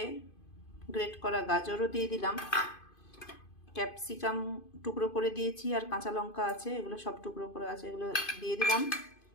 গ্রেট করা গাজরও দিয়ে দিলাম, ক্যাপসিকাম টুকরো করে দিয়েছি, আর কাঁচা লঙ্কা আছে, এগুলো সব টুকরো করে আছে, এগুলো দিয়ে দিলাম।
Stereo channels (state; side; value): late; right; 2.5 ms